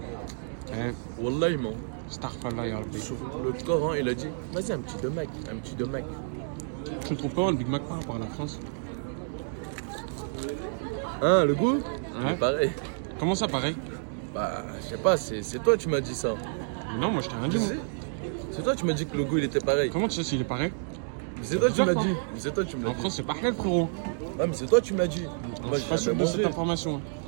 Hein? Wallah, man. Starfallah, ya Rabbi. Sur le Coran, il a dit vas-y, un petit de Mac, un petit de Mac. Tu le trouves pas, le Big Mac par rapport à la France? Hein, le goût? Ouais. Pareil. Comment ça, pareil? Bah, je sais pas, c'est toi, tu m'as dit ça. Non, moi, je t'ai rien dit. Tu moi. sais? C'est toi, tu m'as dit que le goût, il était pareil. Comment tu sais s'il est pareil? C'est toi, tu m'as bizarre, dit. C'est toi, tu me l'as En dit. France, c'est pas halal, frérot. Ah, mais c'est toi, tu m'as dit. Je suis pas sûr de cette information.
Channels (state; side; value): silent; left; digital silence